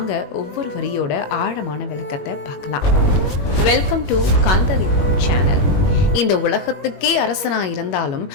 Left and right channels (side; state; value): right; late; 21 ms